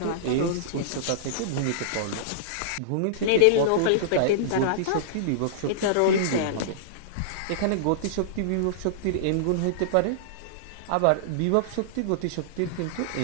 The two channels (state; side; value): different; both; correlation -0.02